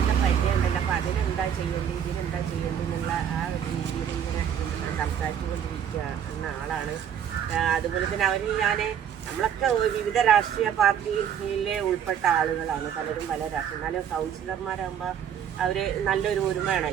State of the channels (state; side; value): quieter; left; 8.8 dB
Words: പരിചയമുണ്ടല്ലോ. അപ്പോൾ അതിനെന്താ ചെയ്യേണ്ടത്, ഇതിനെന്താ ചെയ്യേണ്ടത് എന്നുള്ള ആ ഒരു രീതിയിൽ ഇങ്ങനെ സംസാരിച്ചുകൊണ്ടിരിക്കുന്ന ആളാണ്. അതുപോലെ തന്നെ അവരിൽ നമ്മളൊക്കെ വിവിധ രാഷ്ട്രീയ പാർട്ടിയിലെ ഉൾപ്പെട്ട ആളുകളാണ്, പലരും പല രാഷ്ട്രീയ. എന്നാലും കൗൺസിലർമാരാകുമ്പോൾ അവർ നല്ലൊരു